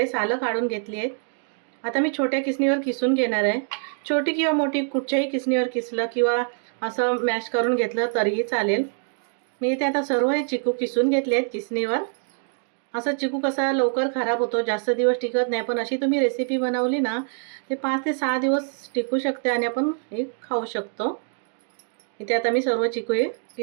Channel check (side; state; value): left; silent; 62 dB below the other